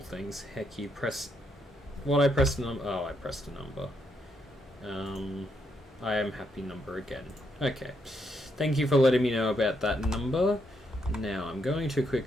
things. Heck, you press... What, I pressed a number? Oh, I pressed a number. I am happy number again. Okay. Thank you for letting me know about that number. Now I'm going to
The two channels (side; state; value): both; normal; correlation 0.77